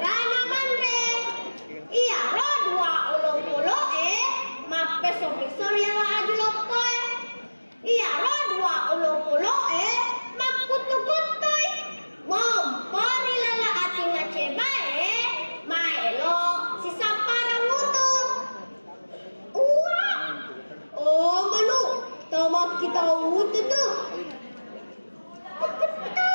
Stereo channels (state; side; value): inverted; both; correlation -1.00